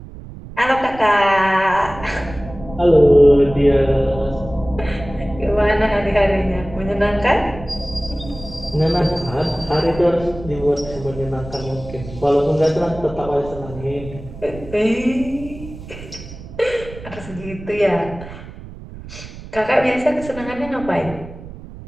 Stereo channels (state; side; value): noise; right; rumble, 14 dB below the sound